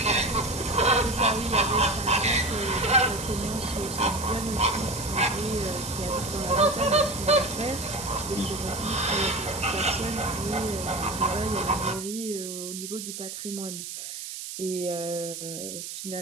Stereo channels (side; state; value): right; noise; hiss, 8 dB below the sound